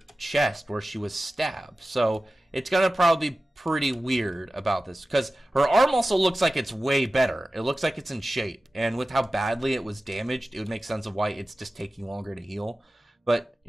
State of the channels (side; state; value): both; normal; correlation 0.95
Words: chest where she was stabbed. So it's gonna probably be pretty weird about this, because her arm also looks like it's way better. It looks like it's in shape, and with how badly it was damaged, it would make sense of why it's just taking longer to heal. But,